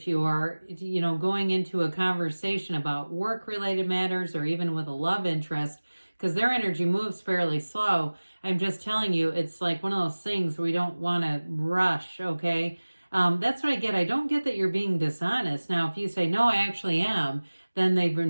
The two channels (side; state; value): both; inverted; correlation -1.00